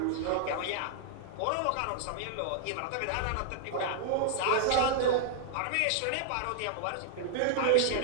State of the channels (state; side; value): different; both; correlation -0.01